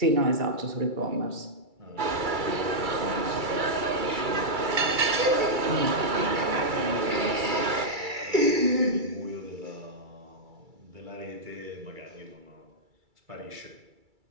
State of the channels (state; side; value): late; left; 2.3 ms